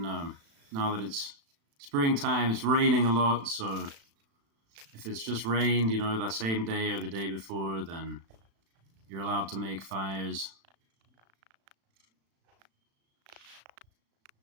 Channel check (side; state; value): left; late; 36 ms